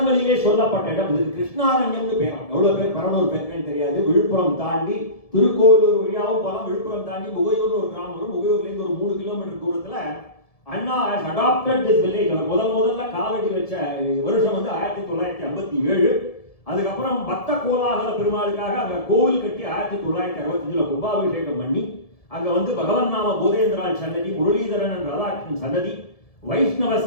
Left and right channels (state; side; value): late; right; 1.7 ms